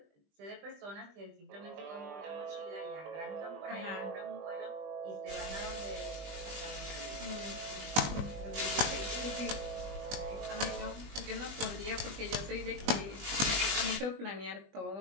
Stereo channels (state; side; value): late; left; 20 ms